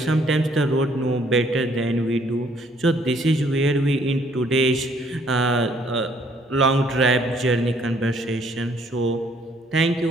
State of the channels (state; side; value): normal; both; correlation 0.64